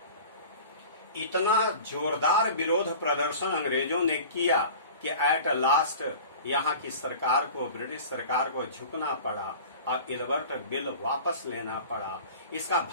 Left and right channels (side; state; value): both; inverted; correlation -0.39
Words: इतना जोरदार विरोध प्रदर्शन अंग्रेजों ने किया कि एट लास्ट यहाँ की सरकार को, ब्रिटिश सरकार को झुकना पड़ा और इल्बर्ट बिल वापस लेना पड़ा। इसका